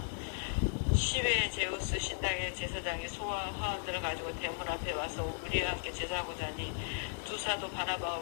시외의 제우스 신당의 제사장이 소와 화환들을 가지고 대문 앞에 와서 우리와 함께 제사하고자 하니 두 사도 바나바와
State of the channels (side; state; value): right; silent; digital silence